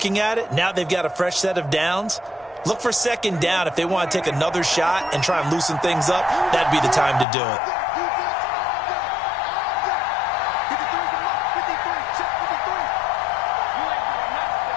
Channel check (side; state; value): right; drops out; at 7.2 s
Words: at it, now they've got a fresh set of downs. Look for 2nd down. If they want to take another shot and try and loosen things up, that'd be the time to do it.